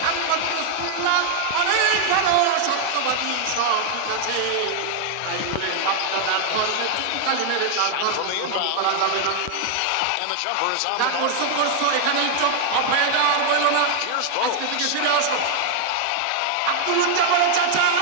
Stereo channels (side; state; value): both; different; correlation 0.00